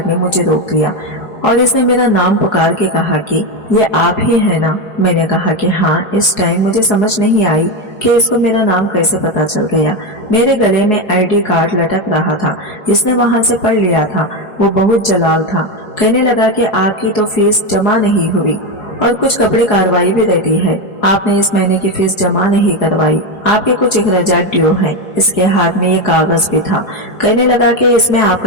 ने मुझे रोक लिया और इसने मेरा नाम पुकार के कहा कि ये आप ही है ना। मैंने कहा कि हाँ। इस टाइम मुझे समझ नहीं आई कि इसको मेरा नाम कैसे पता चल गया। मेरे गले में आईडी कार्ड लटक रहा था, इसने वहां से पढ़ लिया था। वो बहुत जलाल था। कहने लगा कि आपकी तो फीस जमा नहीं हुई और कुछ कपड़े कार्रवाई भी रहती है, आपने इस महीने की फीस जमा नहीं करवाई, आपके कुछ अखराजात ड्यू हैं। इसके हाथ में ये कागज भी था। कहने लगा कि इसमें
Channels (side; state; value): right; late; 4.8 ms